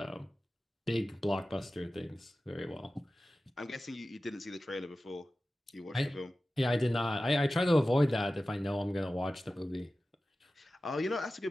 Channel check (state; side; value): normal; both; correlation 0.95